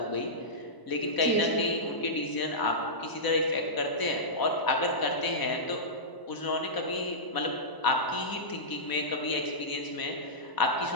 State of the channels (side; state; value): right; late; 1.0 ms